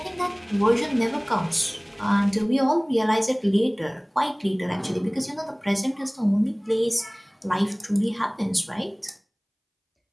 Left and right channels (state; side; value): identical; both; correlation 1.00